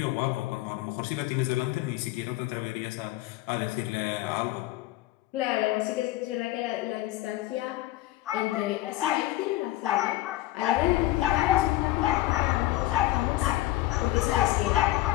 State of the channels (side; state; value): right; quieter; 16.7 dB